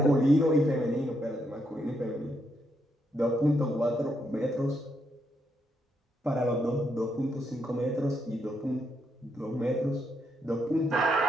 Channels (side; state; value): both; normal; correlation 0.78